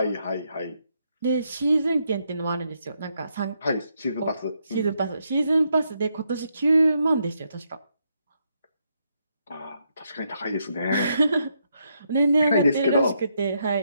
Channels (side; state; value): both; inverted; correlation -0.78